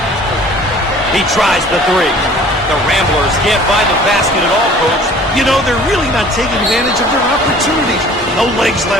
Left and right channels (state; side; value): normal; both; correlation 0.50